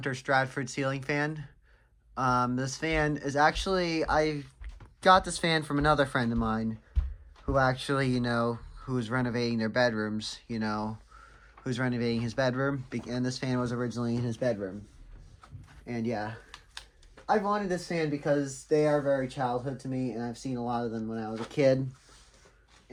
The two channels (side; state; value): both; identical; correlation 1.00